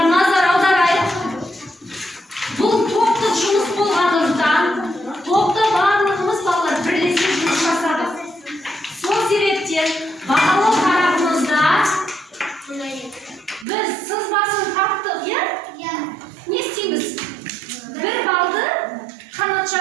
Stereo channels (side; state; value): left; drops out; at 13.7 s